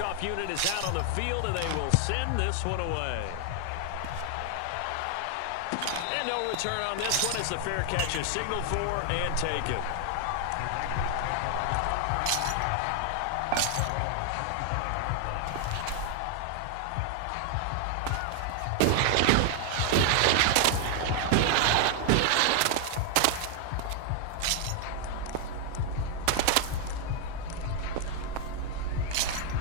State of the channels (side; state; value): both; different; correlation 0.00